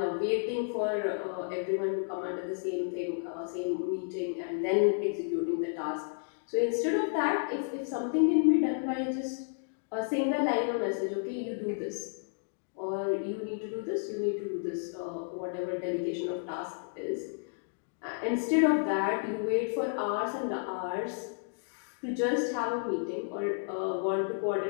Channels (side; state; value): right; silent; digital silence